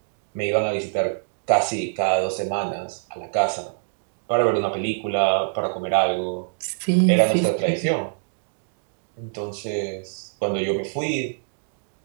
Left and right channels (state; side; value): silent; left; 62 dB below the other